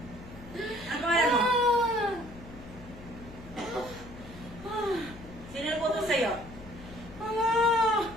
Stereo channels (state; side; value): noise; left; hum, 16 dB below the sound